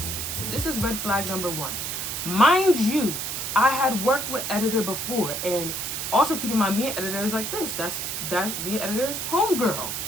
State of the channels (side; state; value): right; noise; hiss, 3 dB below the sound